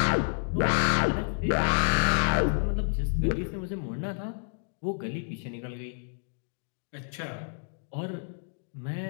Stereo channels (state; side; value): silent; right; 58 dB below the other